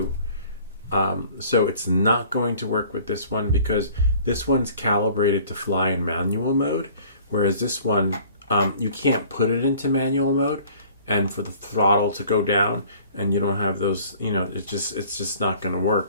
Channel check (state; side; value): inverted; both; correlation -0.52